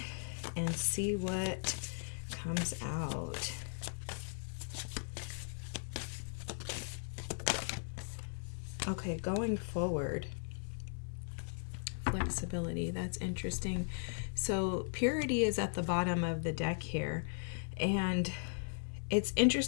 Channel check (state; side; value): silent; right; digital silence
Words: and see what comes out. Okay, going forward. Flexibility, that's interesting. So purity is at the bottom of the deck here, and it's